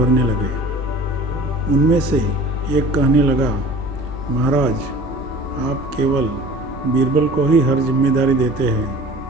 लगे। उनमें से एक कहने लगा, महाराज, आप केवल बीरबल को ही हर जिम्मेदारी देते हैं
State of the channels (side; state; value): right; noise; hum, 22 dB below the sound